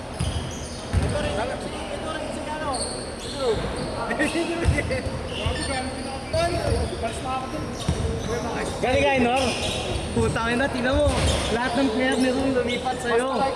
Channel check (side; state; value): both; identical; correlation 1.00